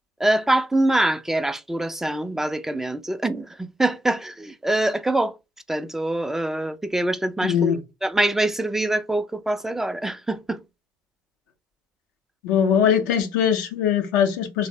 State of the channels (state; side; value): normal; both; correlation 0.69